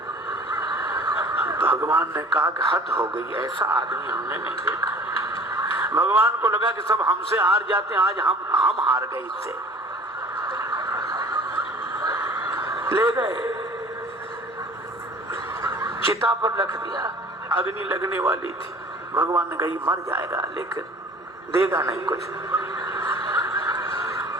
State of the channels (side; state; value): both; normal; correlation 0.48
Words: भगवान ने कहा कि हद हो गई, ऐसा आदमी हमने नहीं देखा। भगवान को लगा कि सब हमसे हार जाते हैं, आज हम हार गए इससे। ले गए, चिता पर रख दिया, अग्नि लगने वाली थी। भगवान ने कही मर जाएगा लेकिन देगा नहीं कुछ।